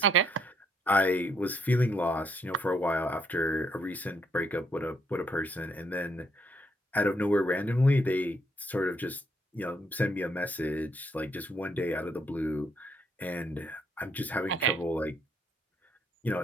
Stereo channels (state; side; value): normal; both; correlation 0.71